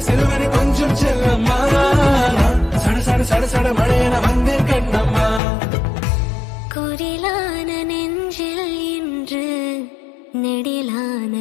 சிலுவன கொஞ்சம் செல்லம்மா சட சட சட சட மழையன வந்தேன் கண்ணம்மா குரிலான நெஞ்சில் இன்று நெடிலான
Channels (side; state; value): right; drops out; at 5.4 s